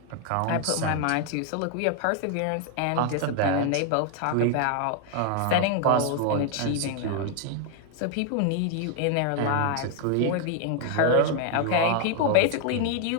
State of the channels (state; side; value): different; both; correlation 0.00